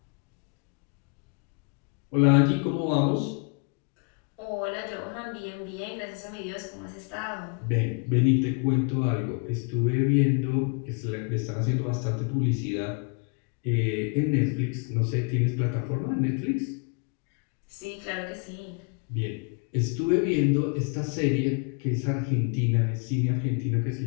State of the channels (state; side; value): quieter; right; 35.9 dB